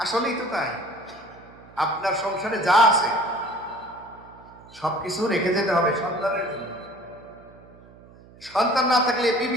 তো তাই। আপনার সংসারে যা আছে সবকিছু রেখে যেতে হবে সন্তানের জন্য। সন্তান না থাকলে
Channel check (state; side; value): noise; right; hum, 23 dB below the sound